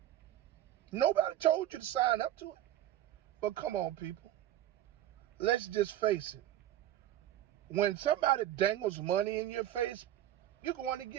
Nobody told you to sign up to it. But come on, people. Let's just face it. When somebody dangles money in your face, you're going to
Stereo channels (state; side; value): quieter; left; 12.8 dB